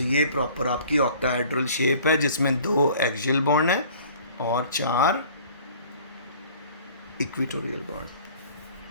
ये प्रॉपर आपकी ऑक्टाहेड्रल शेप है जिसमें 2 एक्सियल बॉन्ड है और 4 इक्वेटोरियल बॉन्ड।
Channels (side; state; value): both; inverted; correlation -0.50